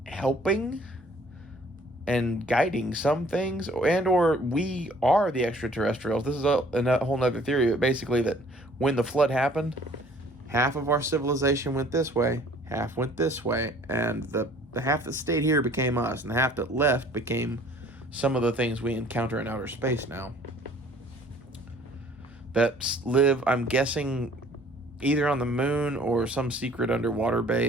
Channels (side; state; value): both; normal; correlation 0.55